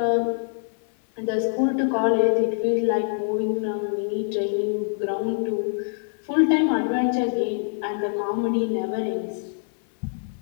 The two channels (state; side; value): silent; right; 61 dB below the other